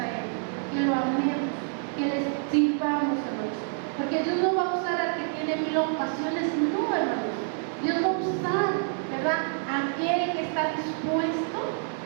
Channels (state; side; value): silent; left; 58 dB below the other